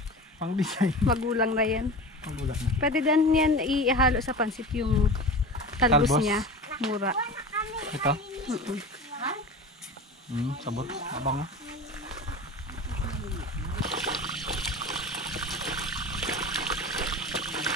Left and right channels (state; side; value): normal; both; correlation 0.32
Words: Pang design. Magulang na yan. Magulat na. Pwede din yan ihalo sa pansit yung talbos Talbos? niya. Mura. Ito? Sabot. Abang.